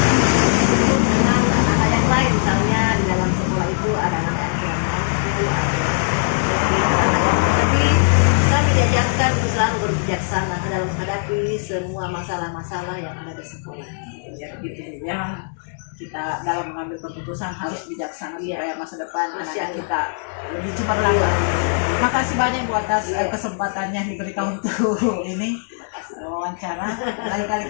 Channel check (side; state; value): right; silent; digital silence